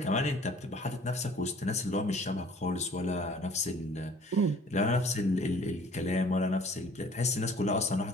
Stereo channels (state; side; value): normal; both; correlation 0.52